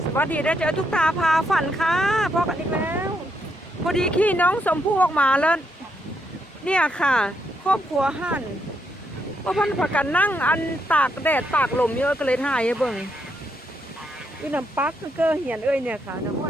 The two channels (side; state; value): both; normal; correlation 0.78